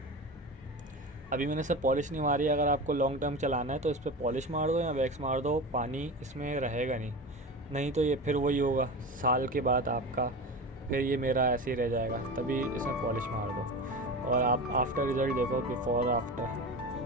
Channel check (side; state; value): both; normal; correlation 0.27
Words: अभी मैंने सब पॉलिश नहीं मारी। अगर आपको लॉन्ग टर्म चलाना है तो इस पर पॉलिश मार दो या वैक्स मार दो, पानी इसमें रहेगा नहीं तो ये फिर वही होगा साल के बाद आपका, फिर ये मेरा ऐसे ही रह जाएगा। तभी इसमें पॉलिश मार दो और आप आफ्टर रिज़ल्ट देखो, बिफ़ोर